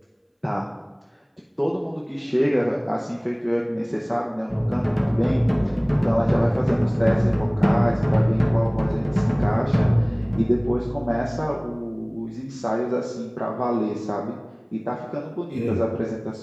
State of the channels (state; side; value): identical; both; correlation 1.00